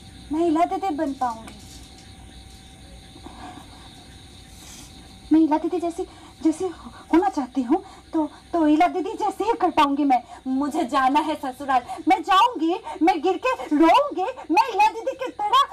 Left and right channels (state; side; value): identical; both; correlation 1.00